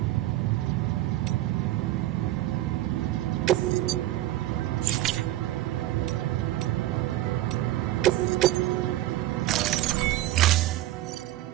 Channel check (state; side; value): quieter; left; 15.1 dB